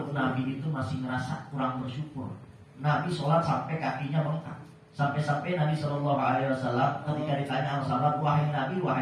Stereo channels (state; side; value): identical; both; correlation 1.00